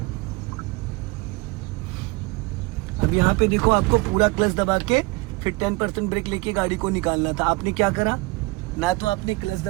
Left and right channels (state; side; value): quieter; left; 24.9 dB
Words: अब यहाँ पे देखो, आपको पूरा क्लच दबा के फिर 10% ब्रेक लेके गाड़ी को निकालना था। आपने क्या करा? ना तो आपने क्लच